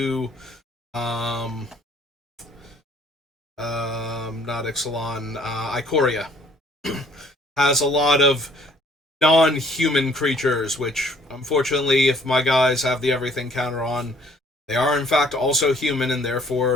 not Ixalan, Ikoria, has a lot of non-human creatures, which, unfortunately, if my guys have the everything counter on, they are in fact also human and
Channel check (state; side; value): normal; both; correlation 0.60